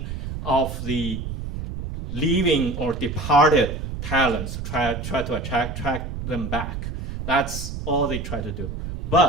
of the leaving or departed talents, try to attract them back. That's all they try to do.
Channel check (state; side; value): noise; right; rumble, 5 dB below the sound